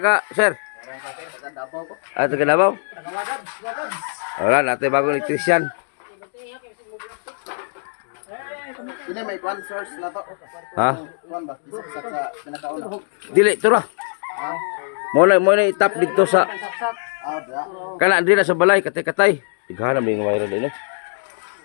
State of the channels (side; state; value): right; silent; digital silence